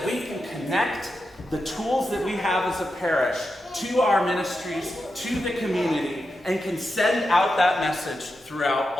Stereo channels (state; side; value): normal; both; correlation 0.88